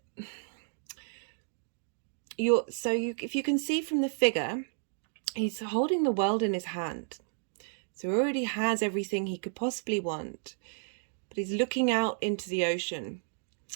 if you can see from the figure, he's holding the world in his hand. So he already has everything he could possibly want, but he's looking out into the ocean.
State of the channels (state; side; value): silent; left; digital silence